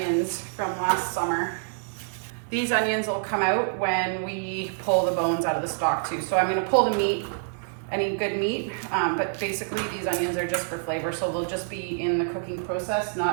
from last summer. These onions will come out when we pull the bones out of the stock too. So I'm gonna pull the meat, any good meat, but basically these onions are just for flavor, so they'll just be in the cooking process,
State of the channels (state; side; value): silent; left; digital silence